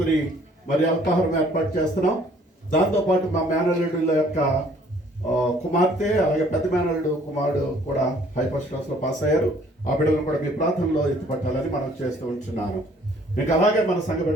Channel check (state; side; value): normal; both; correlation 0.59